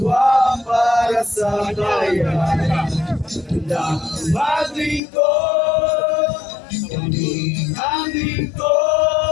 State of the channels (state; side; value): drops out; right; at 5.0 s